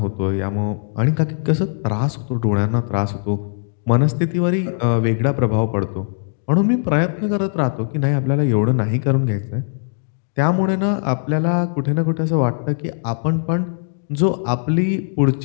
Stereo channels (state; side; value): silent; right; digital silence